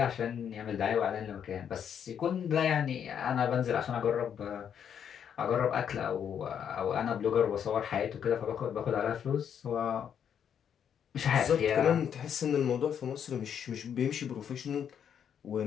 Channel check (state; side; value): quieter; right; 8.4 dB